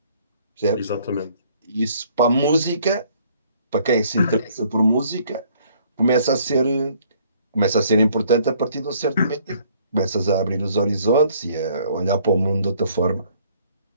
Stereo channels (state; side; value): inverted; both; correlation -0.61